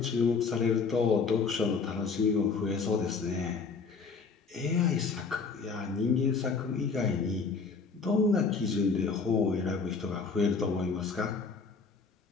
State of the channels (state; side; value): quieter; right; 4.8 dB